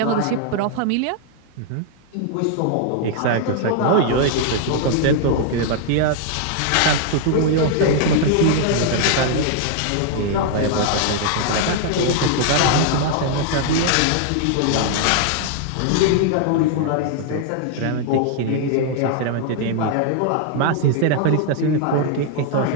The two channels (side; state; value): both; different; correlation 0.00